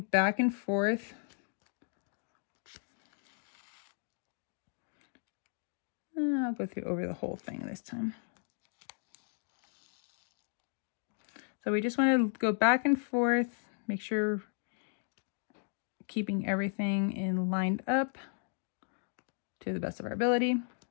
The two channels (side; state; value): right; silent; 54 dB below the other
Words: back and forth. I'll go through over the whole thing this time. So we just want to go back and forth, make sure keeping everything in lined up to the best of our ability.